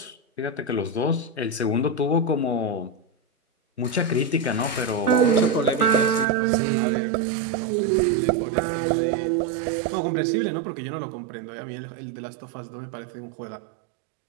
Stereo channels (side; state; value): left; drops out; at 6.2 s